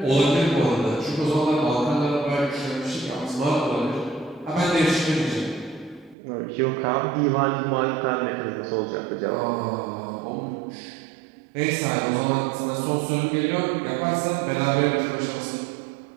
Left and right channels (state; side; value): drops out; left; at 6.2 s